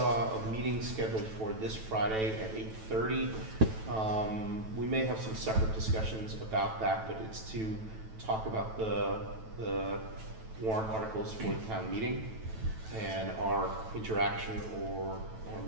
a meeting scheduled for this Friday at 8:30. We may have some separate discussions about that, but it's to talk about the warrant articles for the town meeting and our interaction or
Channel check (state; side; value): late; left; 9.1 ms